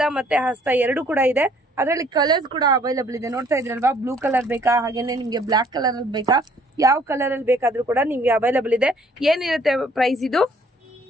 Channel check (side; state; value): both; normal; correlation 0.60